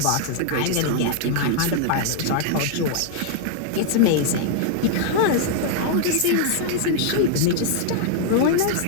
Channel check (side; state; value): both; different; correlation 0.00